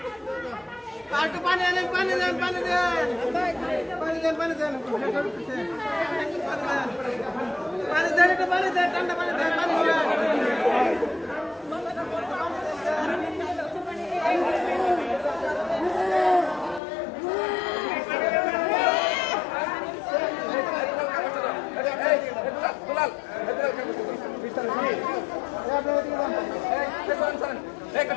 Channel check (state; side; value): drops out; right; at 16.8 s